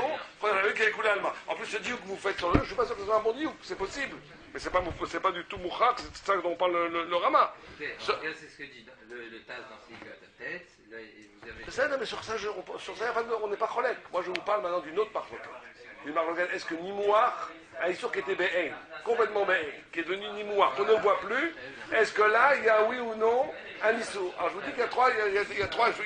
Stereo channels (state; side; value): identical; both; correlation 1.00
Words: qu'on a vu qui est les coups de la loi. En plus, ce diou que vous faites sur le, je ne suis pas sûr que ce soit un bon diou, c'est possible. Mais c'est pas du tout mouchak, c'est ça dont on parle le Rama. C'est ce que dit le Taz dans ses à ta tête. Là, vous avez... Ça, non, mais sur ça, on n'est pas cholèque. Moi, je vous parle maintenant d'une autre marloquette. Une marloquette, est-ce que Nimouar, un Issour qui était Be'en, complètement Be'en, qui est devenu Nimouar, qu'on ne voit plus, est-ce que là, il y a oui ou non un Issour? Alors, je vous dis qu'il y a